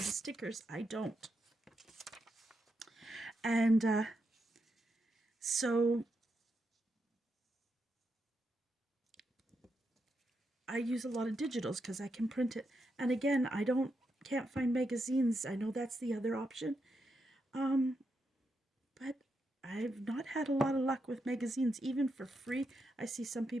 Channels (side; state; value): both; normal; correlation 0.83